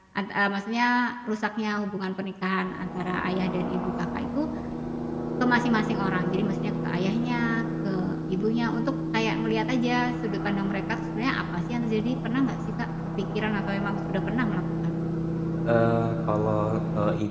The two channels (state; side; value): identical; both; correlation 1.00